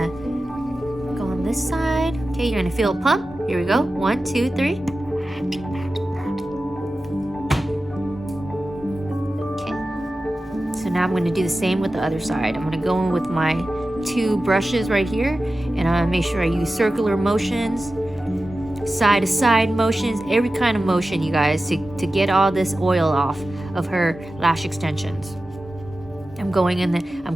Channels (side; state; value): both; normal; correlation 0.94